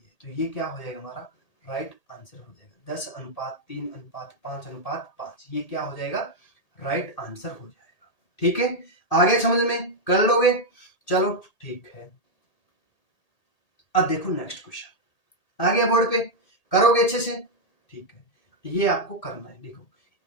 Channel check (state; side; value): late; right; 1.8 ms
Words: है। तो ये क्या हो जाएगा, हमारा राइट आंसर हो जाएगा। 10 अनुपात 3 अनुपात 5 अनुपात 5, ये क्या हो जाएगा, राइट आंसर हो जाएगा। ठीक है, आगे समझ में कर लोगे, चलो ठीक है। अब देखो नेक्स्ट क्वेश्चन आ गया बोर्ड पे, करोगे अच्छे से, ठीक है। ये आपको करना है, देखो